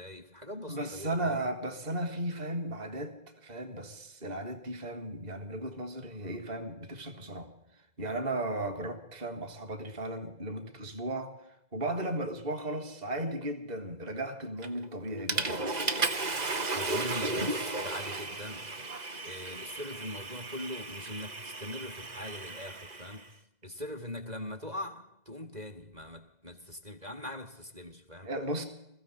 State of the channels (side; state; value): left; late; 2.0 ms